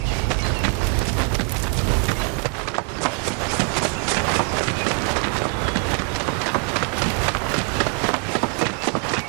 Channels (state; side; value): quieter; left; 31.6 dB